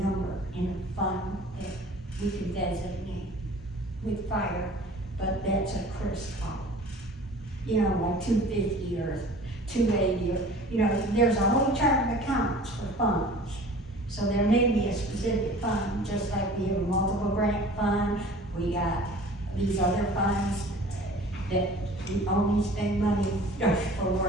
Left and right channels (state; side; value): normal; both; correlation 0.44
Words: in a fund that we can designate with fire, but that's a Chris call. Like 250 or 280, or, there's a whole chart of accounts for funds. So there may be a specific fund, just like we have a multiple grant fund, we got these other funds that we only spend money for